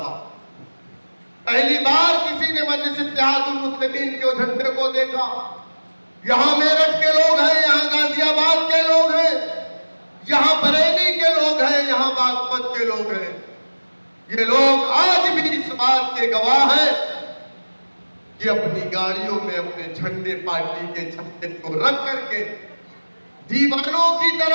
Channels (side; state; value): both; inverted; correlation -1.00